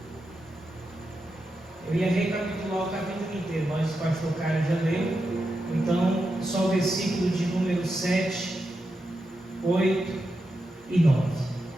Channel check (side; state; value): both; normal; correlation 0.87